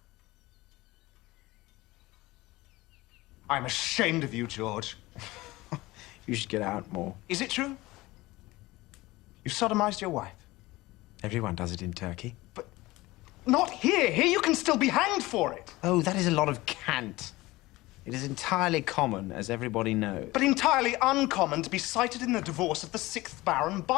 I'm ashamed of you, George. You should get out more. Is it true? You sodomized your wife? Everyone does it in Turkey. But not here. Here you can still be hanged for it. Oh, that is a lot of cant. It is entirely common, as everybody knows. But entirely uncommon to be cited in the divorce of the 6th Baron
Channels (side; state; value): right; quieter; 19.7 dB